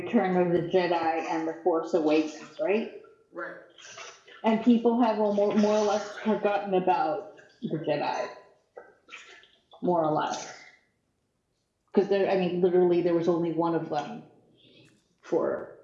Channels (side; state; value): both; identical; correlation 1.00